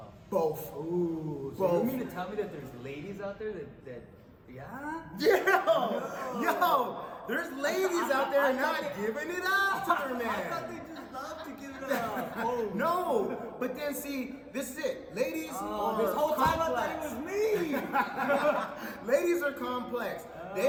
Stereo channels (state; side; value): identical; both; correlation 1.00